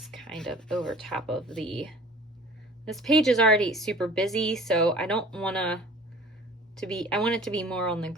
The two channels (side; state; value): both; normal; correlation 0.46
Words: kind of over top of this page is already super busy, so I don't want I want it to be more on the